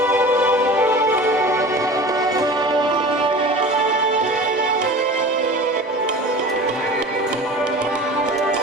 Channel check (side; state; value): both; normal; correlation 0.37